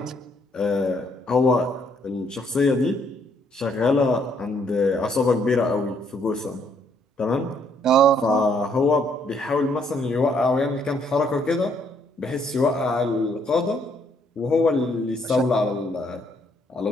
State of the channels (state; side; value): normal; both; correlation 0.68